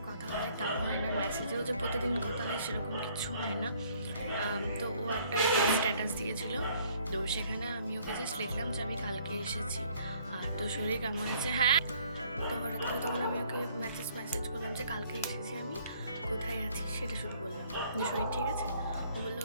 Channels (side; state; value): both; inverted; correlation -0.61